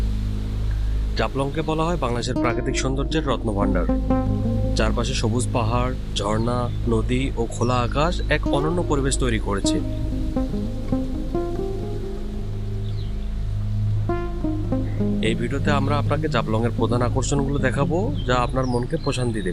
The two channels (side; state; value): both; identical; correlation 1.00